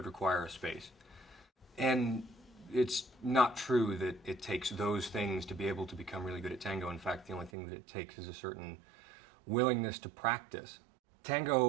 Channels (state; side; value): drops out; left; at 7.5 s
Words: require a space. And it's not true that it takes those things to be able to become really good at tango. In fact, the only thing that it takes is a certain willingness to practice.